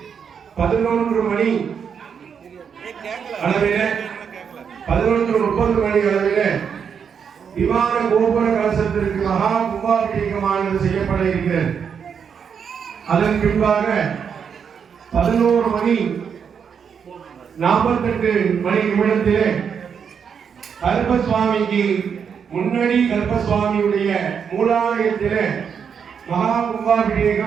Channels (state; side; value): quieter; left; 7.0 dB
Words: 11 மணி அளவில 11:30 மணி அளவில விமான கோபுர கலசத்திற்கு மகா கும்பாபிஷேகமானது செய்யப்பட இருக்கிறது. அதன் பின்பாக 11 மணி 48 மணி நிமிடத்திலே கருப்பசுவாமிக்கு முன்னடி கருப்பசுவாமியுடைய மூலாலயத்திலே மகா